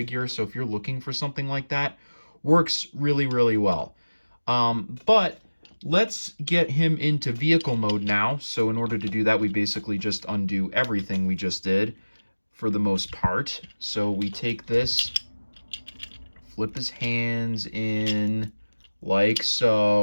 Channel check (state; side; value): inverted; both; correlation -1.00